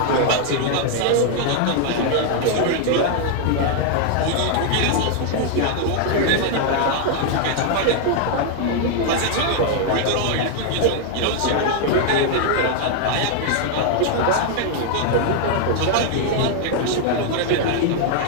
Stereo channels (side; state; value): both; different; correlation 0.00